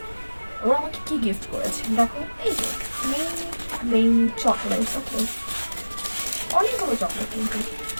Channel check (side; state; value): both; inverted; correlation -1.00